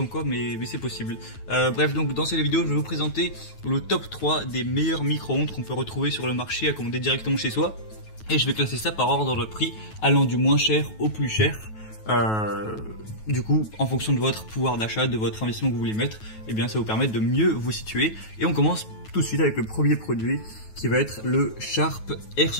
quoi, mais c'est possible. Bref, donc dans cette vidéo, je vais vous présenter le top 3 des meilleurs micro-ondes qu'on peut retrouver sur le marché à commander directement chez soi. Et je vais classer ça par ordre de prix, allant du moins cher au plus cher. Du coup, en fonction de votre pouvoir d'achat, de votre investissement que vous voulez mettre, eh bien, ça va vous permettre de mieux vous situer. Et on commence tout de suite avec le premier produit, qui va être le Sharp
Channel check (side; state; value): right; late; 9.3 ms